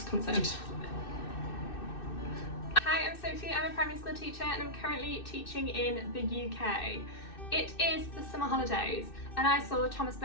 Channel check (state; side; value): late; right; 2.6 ms